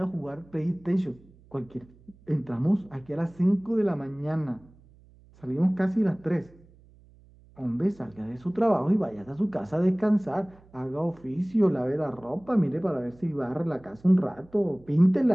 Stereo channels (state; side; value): noise; right; hum, 27 dB below the sound